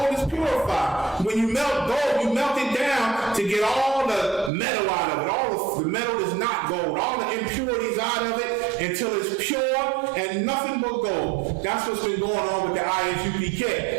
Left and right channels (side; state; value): left; drops out; at 4.5 s